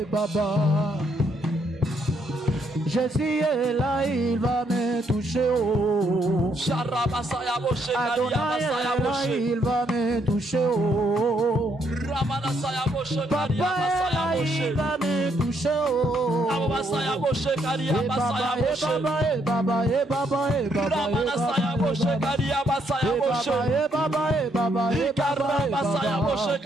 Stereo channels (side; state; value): both; normal; correlation 0.73